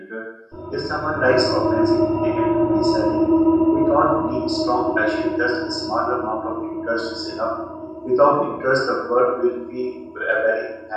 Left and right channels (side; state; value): both; identical; correlation 1.00